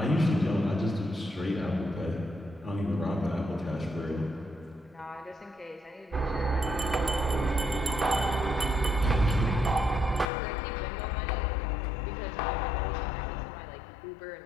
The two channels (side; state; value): right; drops out; at 10.2 s